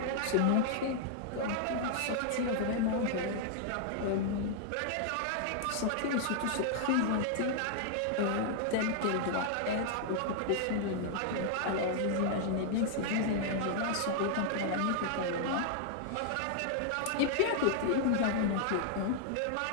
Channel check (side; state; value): both; different; correlation 0.00